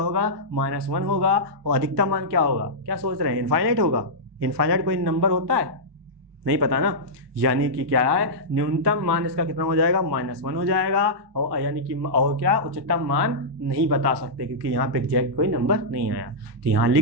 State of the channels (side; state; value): left; late; 1.2 ms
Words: -1 होगा, और अधिकतम मान क्या होगा, क्या सोच रहे हैं, इनफाइनाइट होगा। इनफाइनाइट कोई नंबर होता है, नहीं पता ना, यानी कि क्या है, न्यूनतम मान इसका कितना हो जाएगा, -1 हो जाएगा, और यानी कि और क्या, उच्चतम मान नहीं बता सकते क्योंकि यहाँ पे एग्जैक्ट कोई नंबर नहीं आया, तो यहाँ